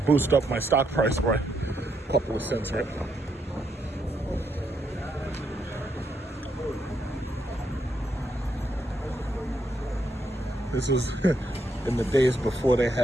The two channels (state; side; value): normal; both; correlation 0.78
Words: up my stock price by a couple of cents, right? This was in the days before they